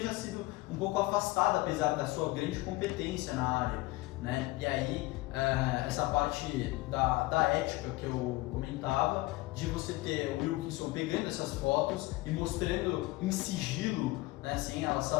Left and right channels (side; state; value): right; quieter; 20.5 dB